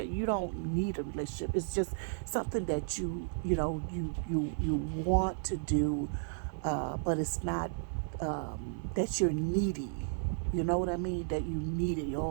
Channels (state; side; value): silent; left; 55 dB below the other